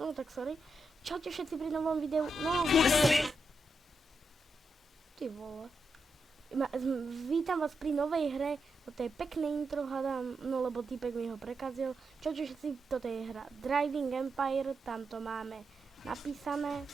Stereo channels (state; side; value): normal; both; correlation 0.85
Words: tak sorry. Čaute všetci pri novom videu, no... Ty vole. Vítam vás pri novej hre, toto je pekné intro, hádam, no lebo týpek mi ho prekazil. Čaute všetci, toto je hra Driving Empire, tam to máme napísané.